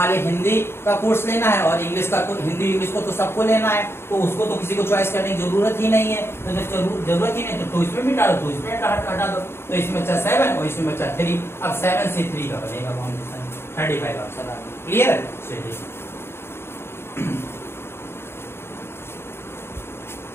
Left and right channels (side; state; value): right; late; 0.12 ms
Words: लीजिए हिंदी का कोर्स लेना है और इंग्लिश का, हिंदी इंग्लिश को तो सबको लेना है, तो उसको तो किसी को चॉइस करने की जरूरत ही नहीं है। तो जब जरूरत ही नहीं तो इसमें भी डालो, तो इसमें हटा दो। तो इसमें बचा 7 और इसमें बचा 3। अब 7C3 का बनेगा कॉम्बिनेशन 35 आंसर। क्लियर है? चलिए